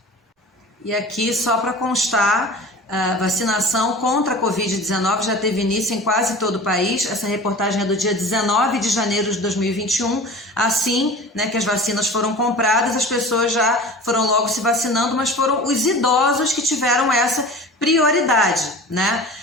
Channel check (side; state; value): both; normal; correlation 0.38